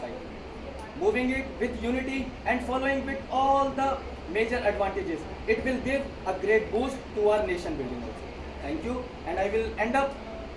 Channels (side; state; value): both; identical; correlation 1.00